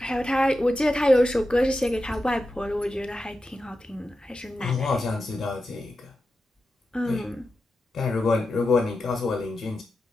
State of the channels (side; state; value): both; normal; correlation 0.90